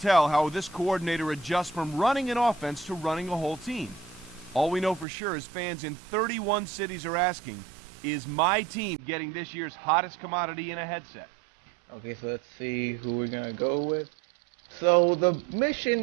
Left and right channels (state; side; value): drops out; left; at 5.1 s